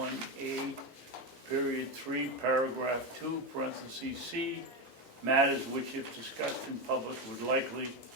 period 3, paragraph 2, parentheses C, matters which if discussed in public would likely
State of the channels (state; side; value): normal; both; correlation 0.12